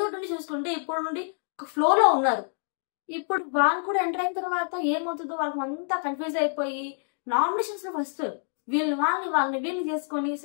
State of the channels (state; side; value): silent; right; 60 dB below the other